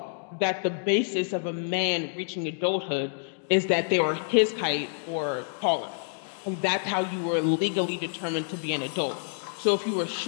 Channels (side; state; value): right; silent; digital silence